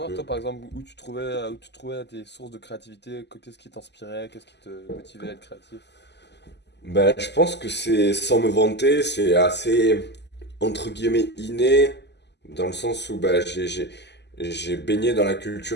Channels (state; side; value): late; right; 0.50 ms